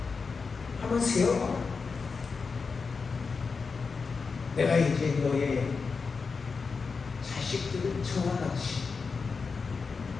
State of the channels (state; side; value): quieter; right; 4.9 dB